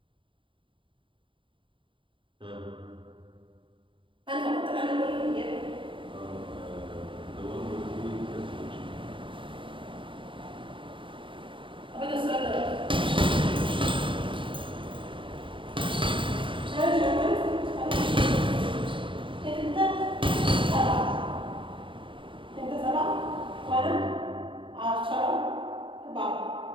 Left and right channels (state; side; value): late; left; 0.25 ms